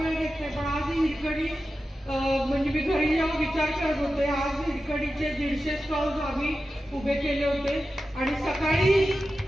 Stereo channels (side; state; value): both; normal; correlation 0.93